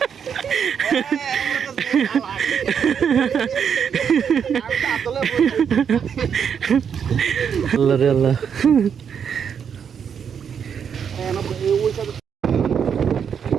আল্লাহ রে আল্লাহ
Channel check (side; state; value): left; quieter; 7.5 dB